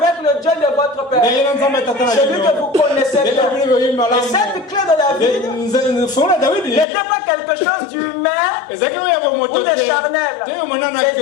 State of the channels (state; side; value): drops out; right; at 6.9 s